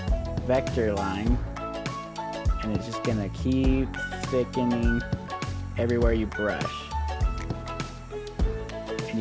vector line, and it's just gonna keep thickening everywhere you brush. And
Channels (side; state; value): both; identical; correlation 1.00